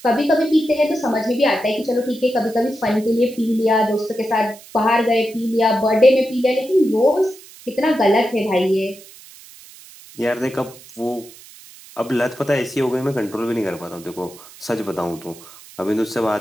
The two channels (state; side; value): noise; right; hiss, 20 dB below the sound